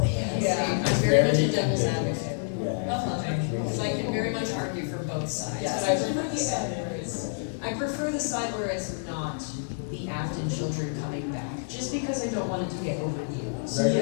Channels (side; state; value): right; silent; 59 dB below the other